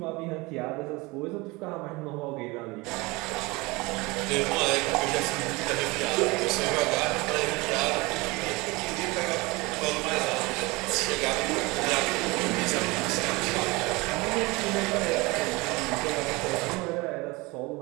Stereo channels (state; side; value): quieter; left; 24.0 dB